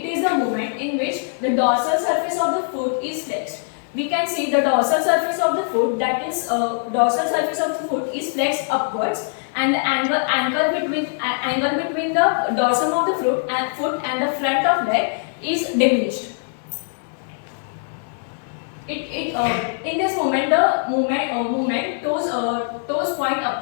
is the movement in which the dorsal surface of the foot is flexed. We can see the dorsal surface of the foot, that is dorsal surface of the foot is flexed upwards, and the angle between the dorsum of the foot and the front of leg is diminished. In this movement, the movement toes point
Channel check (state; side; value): silent; right; 64 dB below the other